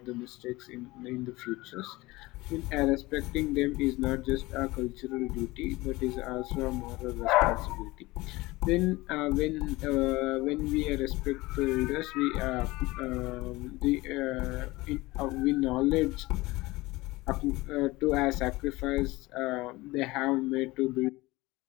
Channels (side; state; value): right; quieter; 20.8 dB